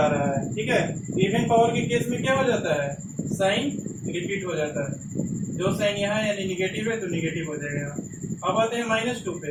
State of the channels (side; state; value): both; identical; correlation 1.00